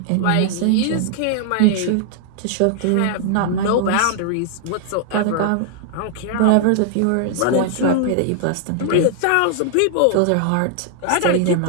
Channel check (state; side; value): different; both; correlation 0.00